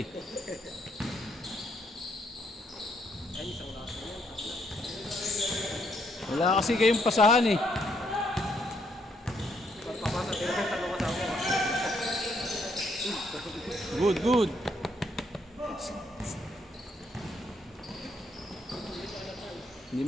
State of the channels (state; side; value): normal; both; correlation 0.72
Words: Ay, isang lasa yan. Wala kasi kayong pasahan eh. Pagpapasa, tinakang tanong kasama ko. Good. Hindi